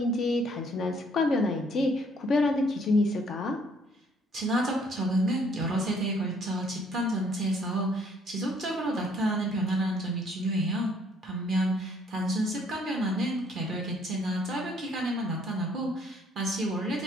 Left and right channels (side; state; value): both; normal; correlation 0.64